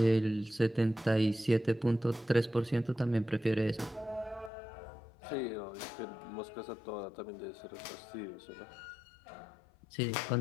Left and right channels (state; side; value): drops out; right; at 4.5 s